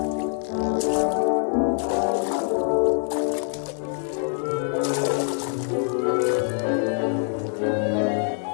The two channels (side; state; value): right; silent; digital silence